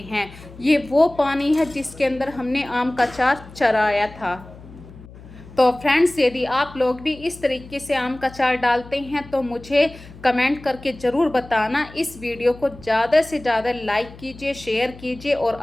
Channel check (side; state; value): left; noise; hum, 19 dB below the sound